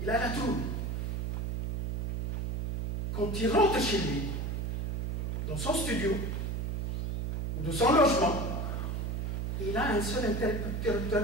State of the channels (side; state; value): right; noise; hum, 1 dB below the sound